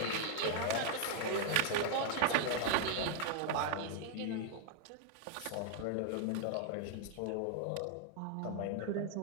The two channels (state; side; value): different; both; correlation 0.00